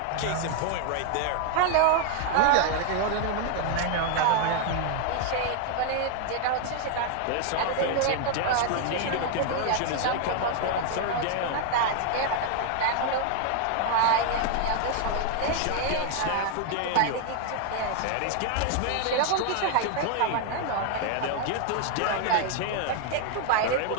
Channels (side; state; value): both; different; correlation 0.00